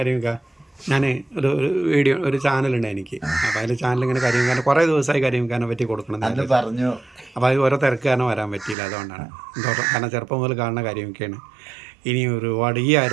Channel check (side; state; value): left; drops out; at 8.8 s